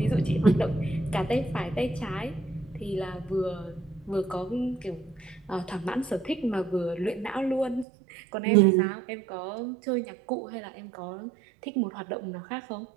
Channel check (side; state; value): left; drops out; at 7.9 s